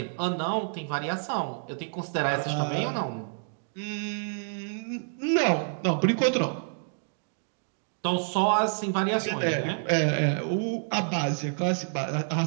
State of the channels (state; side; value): silent; left; digital silence